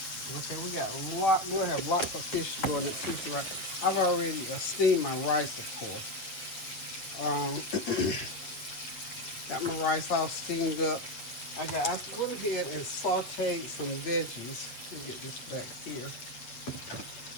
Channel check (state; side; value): late; right; 8.0 ms